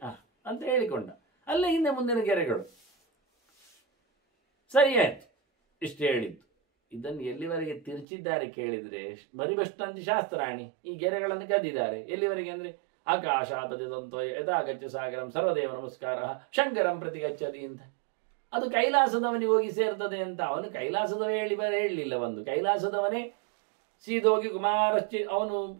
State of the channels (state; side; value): drops out; left; at 8.1 s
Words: ಅಂತ ಹೇಳಿಕೊಂಡ. ಅಲ್ಲ ಹಿಂದೆ ಮುಂದಿನ ಗೆರೆಗಳು ಸರಿಯಾಯ್ತು, ಇಷ್ಟು ಹೇಳಿದ್ದು. ಇದನ್ನು ಎಲ್ಲಿವರೆಗೆ ತಿರುಚಿದ್ದಾರೆ ಕೇಳಿದ್ರೆ, ಬರಿಬಷ್ಟಂತಿ ಶಾಸ್ತ್ರಾಣಿ, ಈ ಗೆರೆಗಳನ್ನು ಕದ್ದಿದ್ದಾರೆ. ಎಲ್ಲಿವರೆಗೆ ಅಂದ್ರೆ ಆಕಾಶಾಪತಿದಂತೋ ಯಥಾಗಚ್ಚ ಸಾಗರಂ ಸರ್ವದೇವ ನಮಸ್ಕಾರ ಶಂಕರಂ ಪ್ರತಿ ಗಚ್ಚತಿ ಅಂತ. ಅದು ಕೈಲಾಸದವನಿಗೆ ಹೋಗಿ ಸೇರ್ತದೆ ಅಂತ. ಅವನು ಕೈಲಾಸದವ ಹೇಳಲಿಲ್ಲ. ಒಂದು ಕೈಲಾಸದವನೇ ಸೀದೋಗಿ ಅವನು